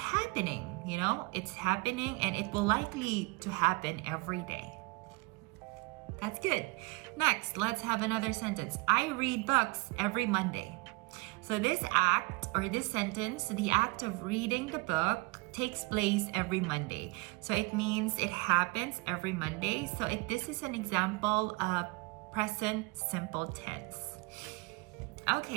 you know? It's happening and it will likely to happen every day. That's good. Next, let's have another sentence. I read books every Monday. So this act or this sentence, the act of reading the book takes place every Monday. So it means it happens every Monday. So this is an example of present simple tense.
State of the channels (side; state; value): left; quieter; 27.0 dB